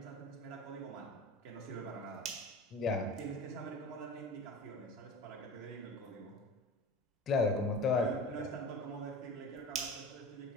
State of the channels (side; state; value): both; normal; correlation 0.34